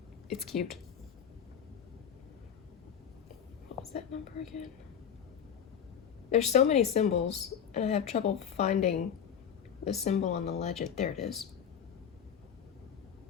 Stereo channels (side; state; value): right; quieter; 8.1 dB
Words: It's cute. What was that number again? There's so many symbols, and I have trouble finding the symbol on the legend. There it is.